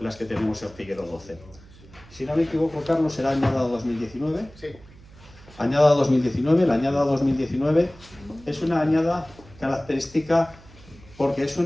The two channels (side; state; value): right; noise; hum, 22 dB below the sound